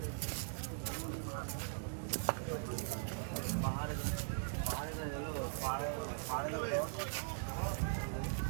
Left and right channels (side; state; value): left; silent; digital silence